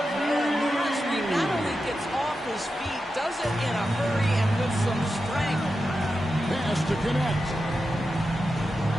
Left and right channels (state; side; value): normal; both; correlation 0.90